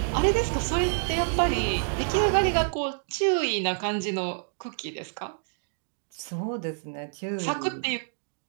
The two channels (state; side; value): silent; left; digital silence